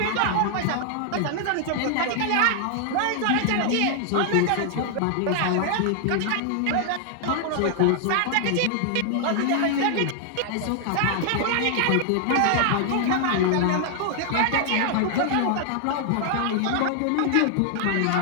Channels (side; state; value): both; different; correlation 0.00